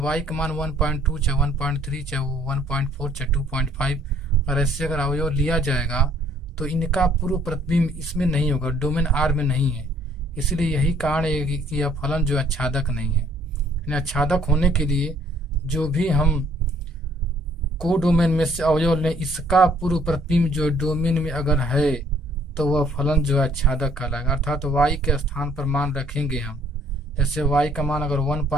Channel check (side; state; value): both; normal; correlation 0.62